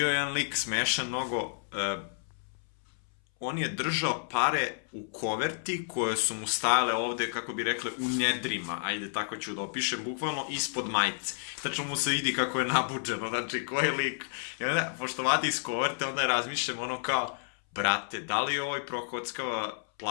jedan lik smešan mnogo. On je držao pare u koverti koje su mu stajale ovde, kako bi rekli, u nedrima. Ajde, tako ću da opišem, bukvalno ispod majice. Tačno mu se vidi kako je nabuđeno, znači ko je lik. I onda, pošto vadi iz koverte, onda razmišljam ono kao, brate, da li ovaj prokockava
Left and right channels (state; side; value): silent; right; 57 dB below the other